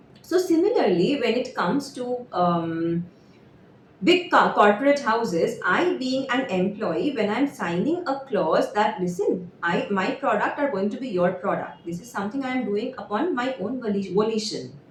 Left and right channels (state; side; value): identical; both; correlation 1.00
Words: So similarly, when it comes to big corporate houses, I being an employee, when I'm signing a clause that, listen, my product are going to be your product, this is something I am doing upon my own volition,